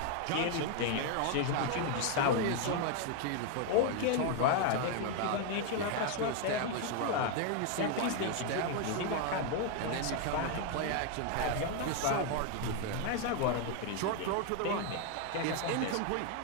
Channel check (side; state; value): both; different; correlation 0.00